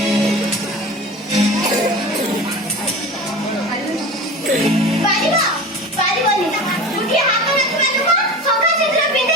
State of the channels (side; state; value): both; normal; correlation 0.33